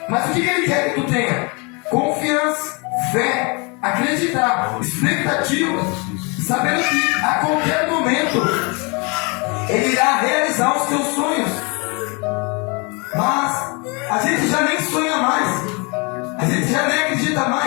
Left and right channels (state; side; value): quieter; right; 30.9 dB